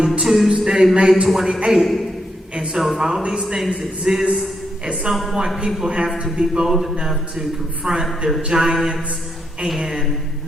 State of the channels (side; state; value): both; normal; correlation 0.80